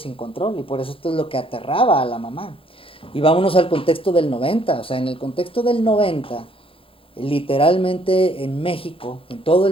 control? Y por eso esto es lo que aterraba a la mamá. Y vámonos al contexto del 90, o sea, en el contexto del 90, literalmente en México, en todo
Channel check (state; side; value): late; right; 0.26 ms